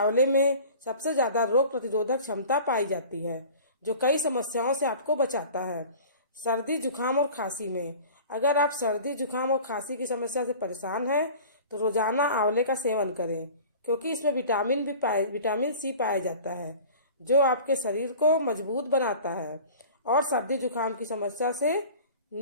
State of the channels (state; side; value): inverted; both; correlation -0.41